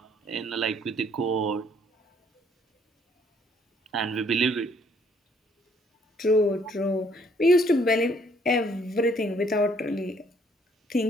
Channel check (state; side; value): normal; both; correlation 0.64